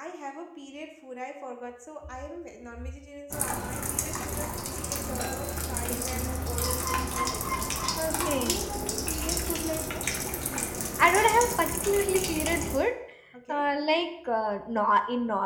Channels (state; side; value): identical; both; correlation 1.00